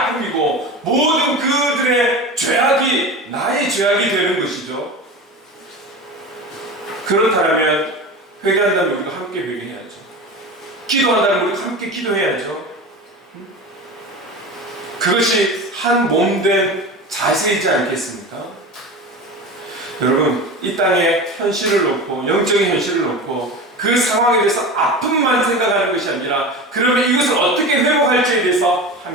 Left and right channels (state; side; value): normal; both; correlation 0.30